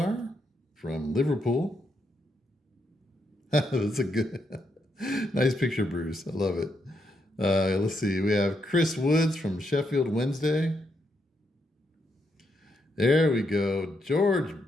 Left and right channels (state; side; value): normal; both; correlation 0.79